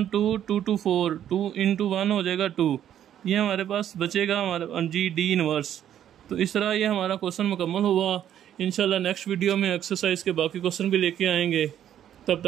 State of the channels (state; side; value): quieter; left; 10.5 dB